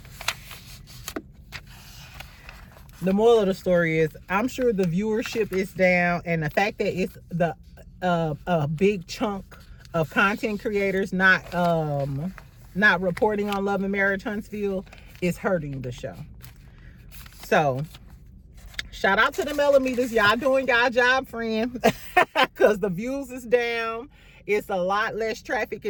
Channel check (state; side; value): identical; both; correlation 1.00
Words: the moral of the story is, I'm sure the viewership is down, and the fact that it's a big chunk of content creators not reporting on Love and Marriage Huntsville is hurting the show. So shout out to the millimeters. Y'all doing y'all job, friend. Because the views is down. It's a lot less traffic